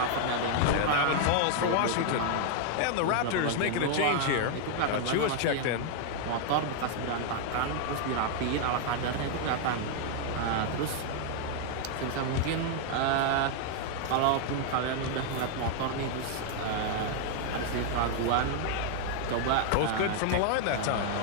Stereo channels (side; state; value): both; different; correlation 0.00